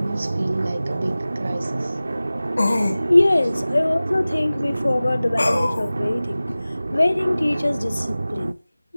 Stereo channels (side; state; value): both; inverted; correlation -0.97